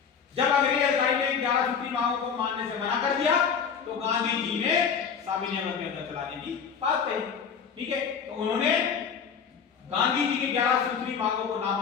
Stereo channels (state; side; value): quieter; right; 6.7 dB